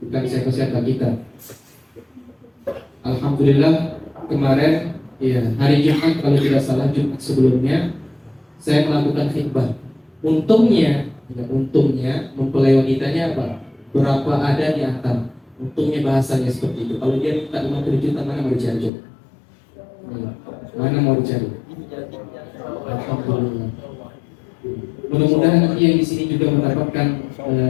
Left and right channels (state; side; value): drops out; right; at 18.9 s